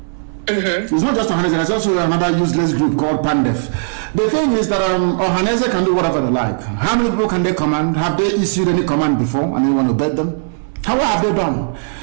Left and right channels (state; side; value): silent; left; digital silence